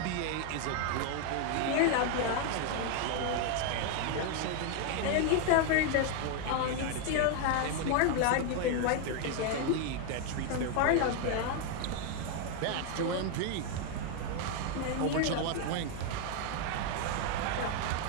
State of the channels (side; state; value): both; different; correlation 0.01